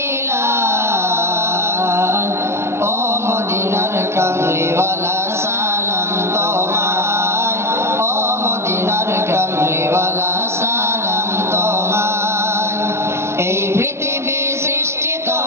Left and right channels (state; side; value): late; left; 0.13 ms